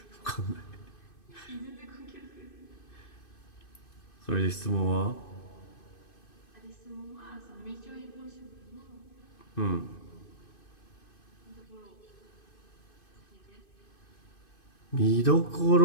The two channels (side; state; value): right; late; 2.6 ms